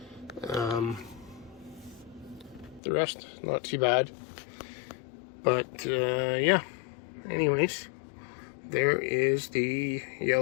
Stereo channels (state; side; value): drops out; right; at 2.8 s